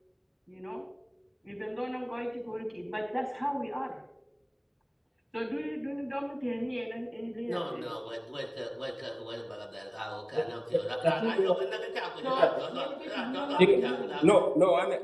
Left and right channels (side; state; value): both; identical; correlation 1.00